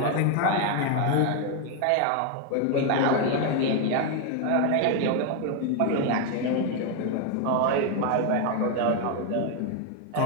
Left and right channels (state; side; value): different; both; correlation 0.01